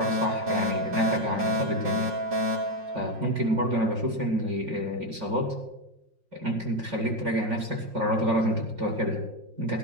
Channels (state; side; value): late; left; 5.6 ms